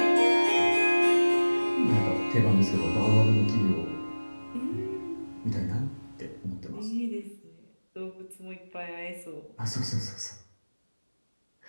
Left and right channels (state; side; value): inverted; both; correlation -1.00